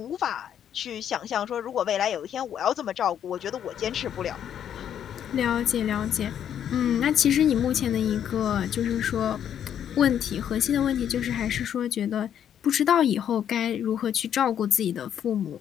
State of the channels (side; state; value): right; quieter; 9.5 dB